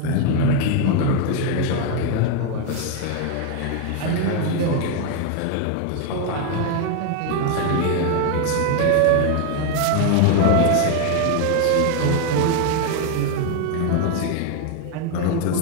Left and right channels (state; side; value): different; both; correlation 0.01